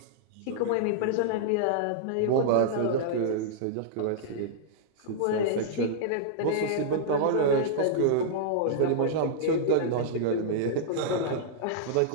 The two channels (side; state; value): both; different; correlation -0.02